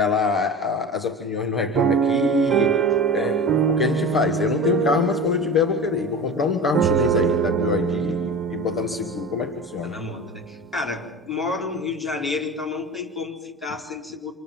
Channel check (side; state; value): both; normal; correlation 0.32